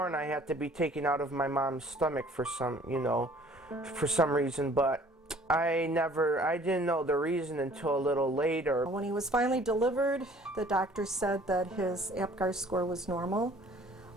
I had to be taken out of my mom's stomach for some reason, but I didn't know the reason until a little later. When he was finally delivered, the doctor said that his Apgar score was normal,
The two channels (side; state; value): both; normal; correlation 0.54